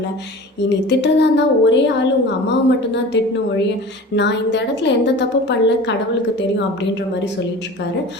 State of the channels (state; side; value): normal; both; correlation 0.38